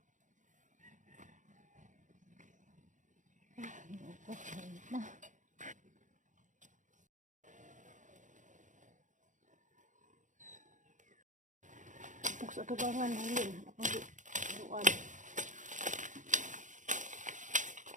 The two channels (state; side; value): late; left; 0.36 ms